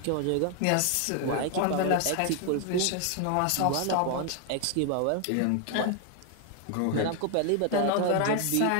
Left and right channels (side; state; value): both; different; correlation 0.00